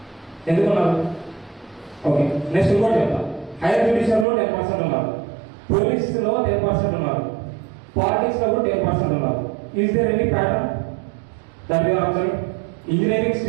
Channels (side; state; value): left; drops out; at 4.2 s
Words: ఎందుకు ఉన్నారు? ఓకే, నెక్స్ట్ ఇంకోటి చెప్తాను. హైయర్ జ్యుడిషియర్లో 10% ఉన్నారు, పోలీస్లో 10% ఉన్నారు, పాలిటిక్స్లో కూడా 10% ఉన్నారు. Is there any pattern that you are observing? Engineering